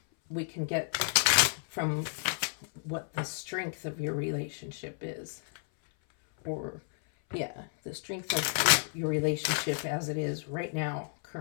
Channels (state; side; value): silent; right; 57 dB below the other